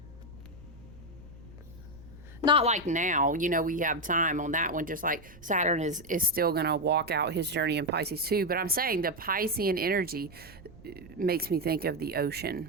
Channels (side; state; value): right; noise; rumble, 21 dB below the sound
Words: Not like now, we have time on that one, just like Saturn is still going to walk out his journey in Pisces too. But I'm saying the Piscean energy makes me think of the